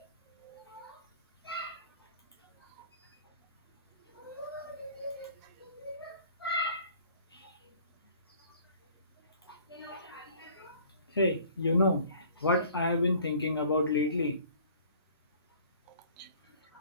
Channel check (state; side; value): inverted; both; correlation -0.52